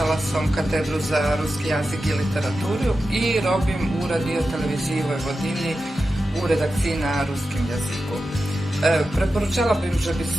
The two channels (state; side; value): normal; both; correlation 0.91